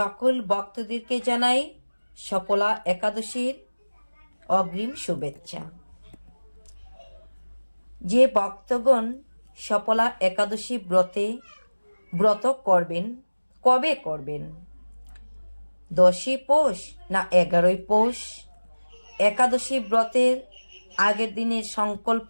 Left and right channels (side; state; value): both; inverted; correlation -1.00